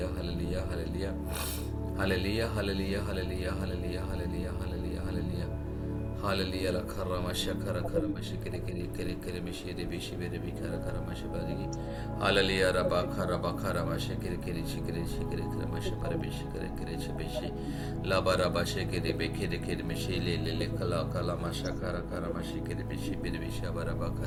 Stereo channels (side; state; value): both; identical; correlation 1.00